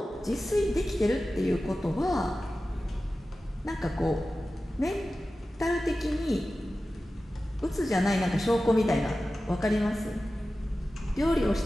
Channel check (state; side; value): normal; both; correlation 0.95